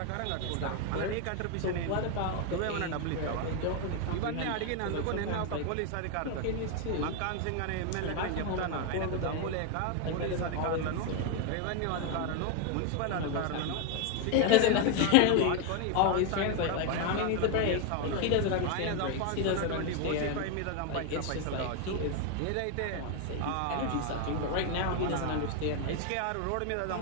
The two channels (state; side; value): different; both; correlation 0.01